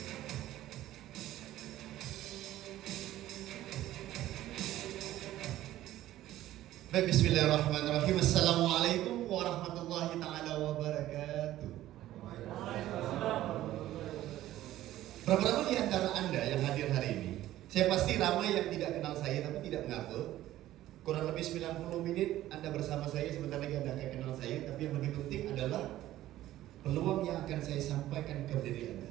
Baik, bismillahirrahmanirrahim. Assalamualaikum warahmatullahi ta'ala wabarakatuh. Berapa ramai di antara Anda yang hadir hari ini? Saya pasti ramai yang tidak kenal saya tapi tidak mengaku. Kurang lebih 90 menit Anda bersama saya, sebentar lagi Anda akan kenal saya. Tapi yang lebih penting adalah peluang yang akan saya sampaikan kepada diri Anda.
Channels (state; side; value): quieter; left; 14.3 dB